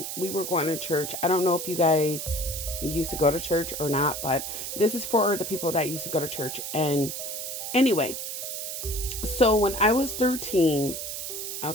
we were going to church. I don't know if you guys used to go to church or not, but this is for the people that used to go to church. And anyway, so when I was 13,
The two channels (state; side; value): noise; right; hiss, 5 dB below the sound